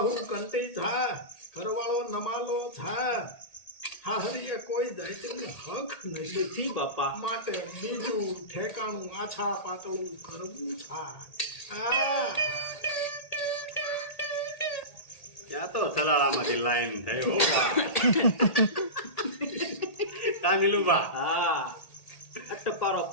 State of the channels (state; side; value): late; right; 1.8 ms